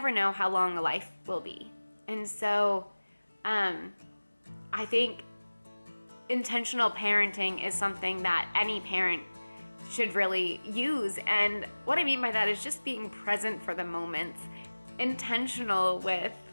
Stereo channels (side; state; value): both; inverted; correlation -1.00